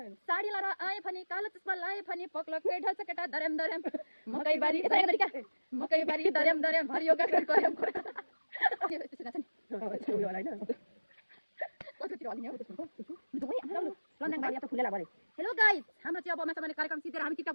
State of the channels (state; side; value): inverted; both; correlation -1.00